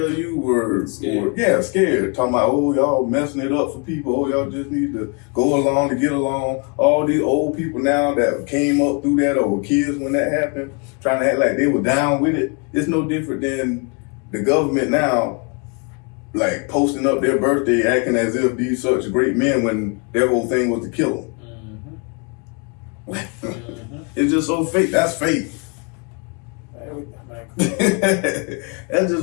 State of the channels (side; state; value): right; quieter; 34.0 dB